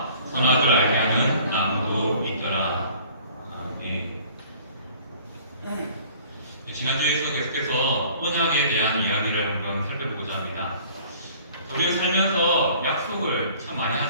선악을 알게 하는 나무도 있더라. 아멘. 지난주에서 계속해서 언약에 대한 이야기를 한번 살펴보고자 합니다. 우리가 살면서 약속을 참 많이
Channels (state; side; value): inverted; both; correlation -0.52